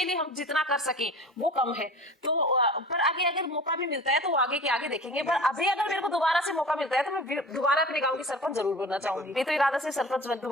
लिए हम जितना कर सकें वो कम है। तो पर आगे अगर मौका भी मिलता है तो आगे के आगे देखेंगे। पर अभी अगर मेरे को दोबारा से मौका मिलता है तो मैं दोबारा अपने गाँव की सरपंच जरूर बनना चाहूंगी। ये तो इरादा से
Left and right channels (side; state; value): both; normal; correlation 0.39